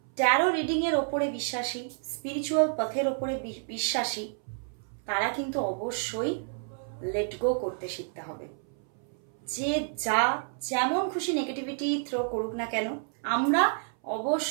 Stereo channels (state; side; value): silent; left; 58 dB below the other